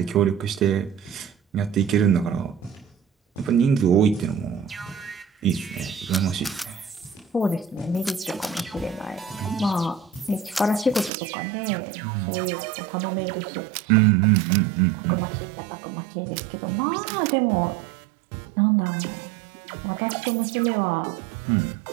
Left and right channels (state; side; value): drops out; left; at 11.1 s